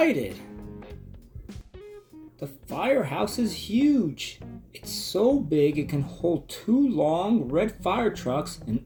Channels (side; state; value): both; identical; correlation 1.00